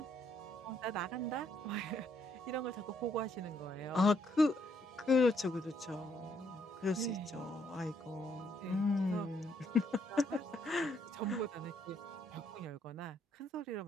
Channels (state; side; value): normal; both; correlation 0.71